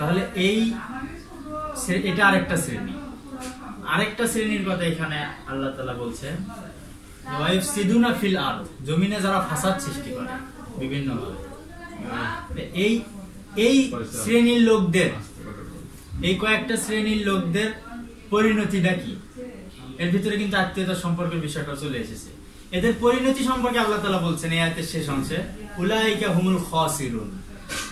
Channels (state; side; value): identical; both; correlation 1.00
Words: এটা আরেকটা শ্রেণী। আরেকটা শ্রেণীর কথা এখানে আল্লাহ তাআলা বলছেন, ওয়াইফসিদুনা ফিল আরদ, জমিনে যারা ফাসাদ সৃষ্টি করে বিভিন্ন ভাবে। এই শ্রেণীর লোকদের, এই কয়েকটা শ্রেণীর লোকদের পরিণতিটা কি? এর ভিতরে কিন্তু আত্মীয়তার সম্পর্কের বিষয়টা চলে এসেছে। এদের পরিণতি সম্পর্কে আল্লাহ তাআলা বলছেন এই আয়াতের শেষ অংশে, উলাইকা হুমুল খাসিরুন,